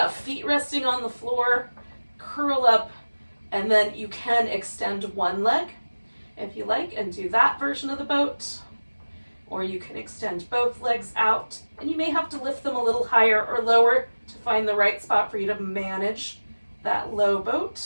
Feet resting on the floor, curl up, and then you can extend one leg if you like and do that version of the boat, or you can extend both legs out, and you may have to lift them a little higher or lower to find the right spot for you to manage that low boat.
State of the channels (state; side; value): inverted; both; correlation -1.00